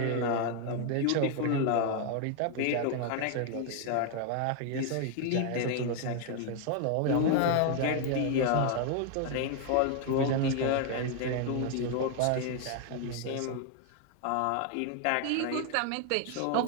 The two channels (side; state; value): both; different; correlation 0.00